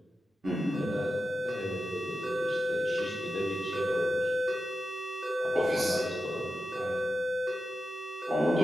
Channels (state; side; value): normal; both; correlation 0.90